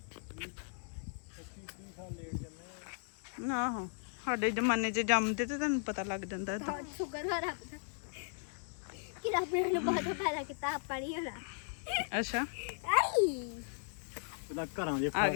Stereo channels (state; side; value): silent; right; digital silence